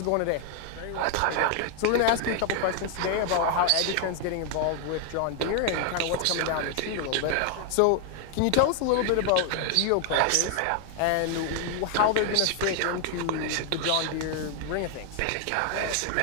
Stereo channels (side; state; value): both; different; correlation 0.00